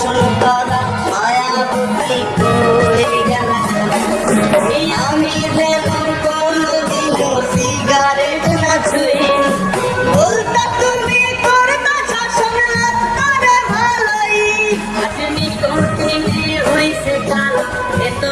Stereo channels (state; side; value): identical; both; correlation 1.00